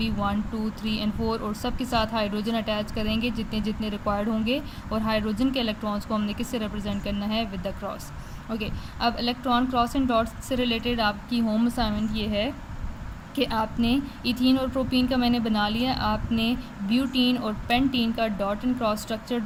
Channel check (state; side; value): identical; both; correlation 1.00